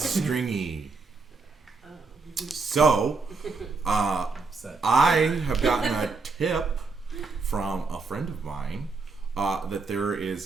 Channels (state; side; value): quieter; left; 4.2 dB